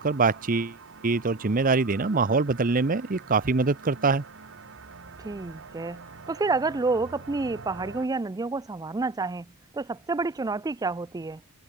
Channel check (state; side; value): quieter; left; 3.5 dB